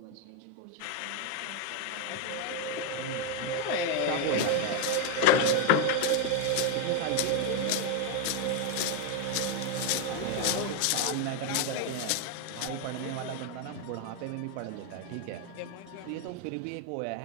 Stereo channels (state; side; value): different; both; correlation 0.01